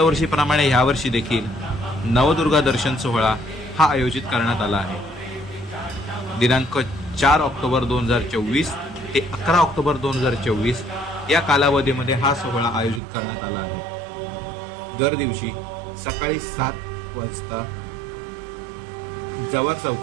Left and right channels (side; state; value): left; drops out; at 13.0 s